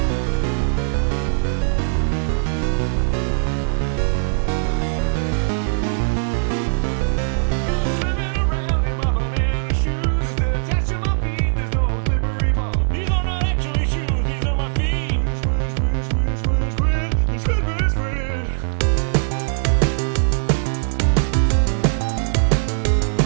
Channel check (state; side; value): silent; left; digital silence